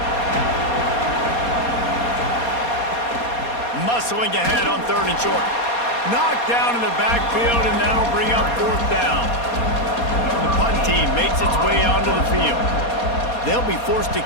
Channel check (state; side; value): late; right; 4.2 ms